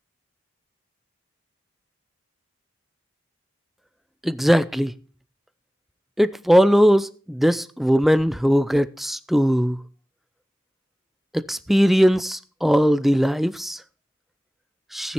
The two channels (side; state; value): both; normal; correlation 0.98